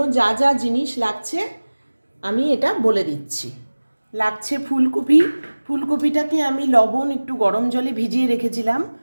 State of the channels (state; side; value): inverted; both; correlation -1.00